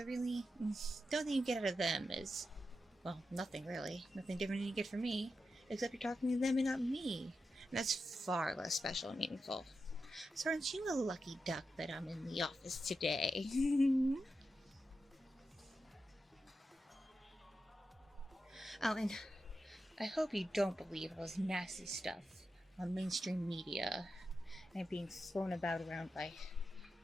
really, the only thing you get out of them is, well, nothing really. Nothing different than you get from me, except you're talking to them and not me. And that's far less special and meaningful. So aren't you a lucky duck that I'm in the office today? Oh, and I hope you don't believe all this nasty stuff on mainstream media and being thrown about around by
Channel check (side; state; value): both; normal; correlation 0.89